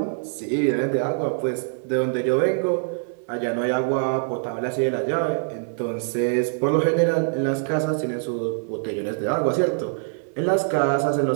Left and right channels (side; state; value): left; silent; 63 dB below the other